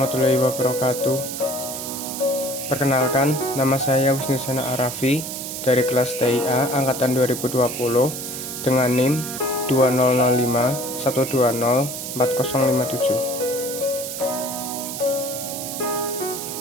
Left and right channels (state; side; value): noise; right; hiss, 7 dB below the sound